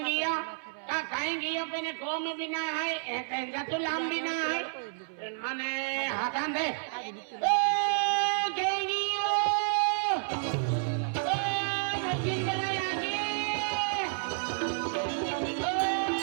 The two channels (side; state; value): left; silent; 57 dB below the other